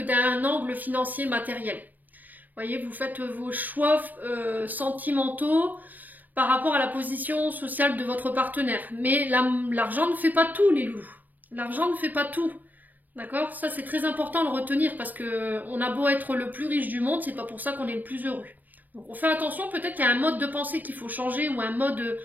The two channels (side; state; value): left; late; 0.084 ms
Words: angle financier matériel. Vous voyez, vous faites vos choix sentimentaux par rapport à la position sociale de votre partenaire. Mais l'argent ne fait pas tout, les loups. L'argent ne fait pas tout. D'accord? Ça, c'est très important de le retenir parce que on a beau être le plus riche du monde, c'est pas pour ça qu'on est le plus heureux. Donc, on fait attention, peut-être qu'il y a un mode de pensée qu'il faut changer ou un mode,